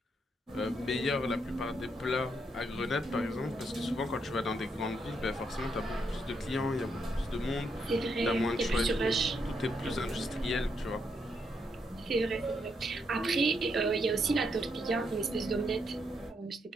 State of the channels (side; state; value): both; normal; correlation 0.78